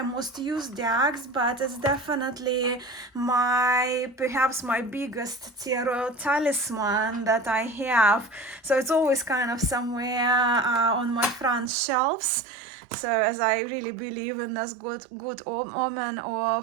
most used decks, but it's definitely perhaps my biggest tarot talisman that I have. So it's always kind of somewhere on my front shelves. So as I really believe in this good omen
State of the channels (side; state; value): left; drops out; at 11.7 s